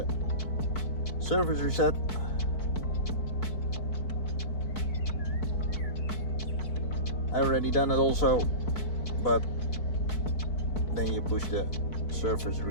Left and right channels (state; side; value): late; right; 4.6 ms